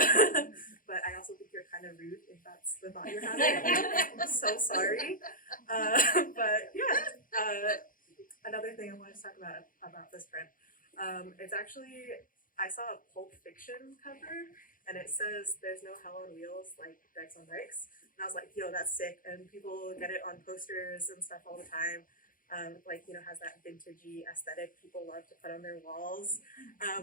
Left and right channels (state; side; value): late; right; 0.40 ms